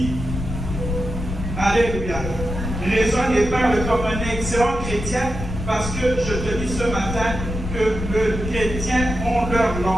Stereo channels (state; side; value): noise; left; rumble, 6 dB below the sound